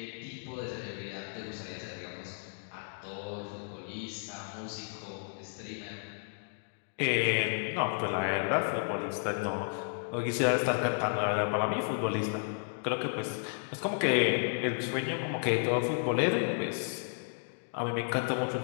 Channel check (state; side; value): silent; right; digital silence